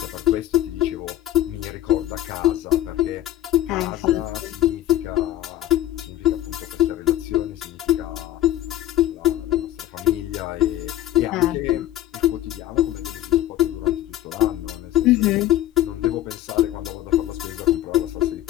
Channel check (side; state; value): right; quieter; 13.6 dB